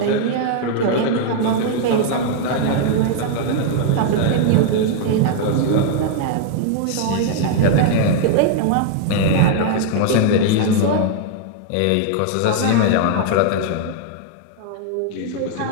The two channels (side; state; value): both; different; correlation 0.00